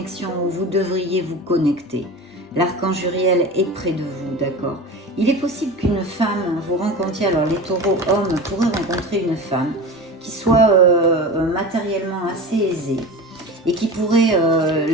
où vous devriez vous connecter. L'archange Uriel est près de vous, d'accord? Il est possible qu'une femme, vous rencontriez, alors les taureaux hommes pourraient rencontrer une femme qui soit matériellement assez aisée et qui pourrait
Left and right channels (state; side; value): normal; both; correlation 0.31